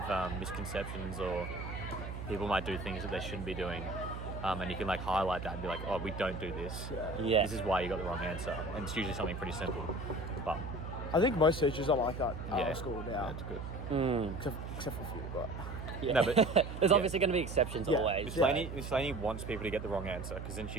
misconceptions or people might do things that they shouldn't be doing, and you can like highlight that and be like, oh, we don't do this. Yeah. This is why you got the wrong answer, and it's usually something pretty simple. But I think most teachers are like that at yeah, our school now. it's good. Except for a few, but Yeah. No, but- there's yeah. obviously going to be exceptions Yeah. always. Miss Laney wants people to get the wrong answer because then she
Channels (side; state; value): right; noise; hum, 7 dB below the sound